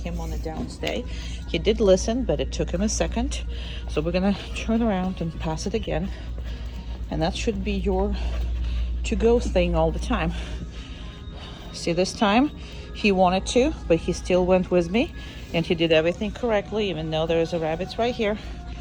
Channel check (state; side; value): identical; both; correlation 1.00